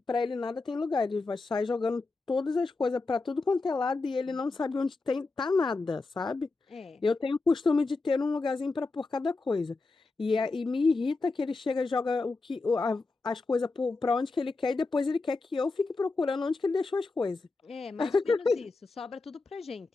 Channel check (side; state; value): right; quieter; 3.7 dB